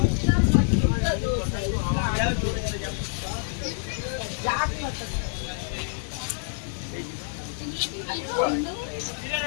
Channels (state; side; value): silent; right; digital silence